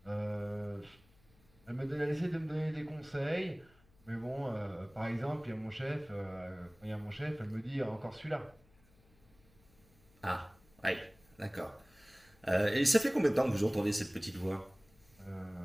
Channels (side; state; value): left; noise; hum, 29 dB below the sound